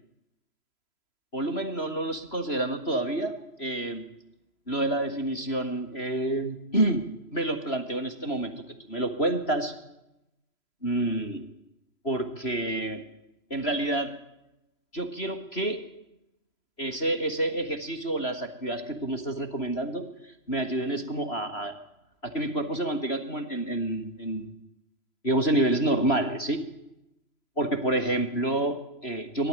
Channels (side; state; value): right; late; 3.0 ms